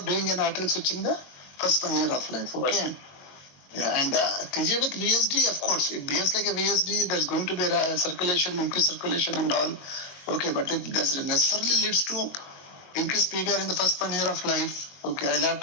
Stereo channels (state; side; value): late; right; 22 ms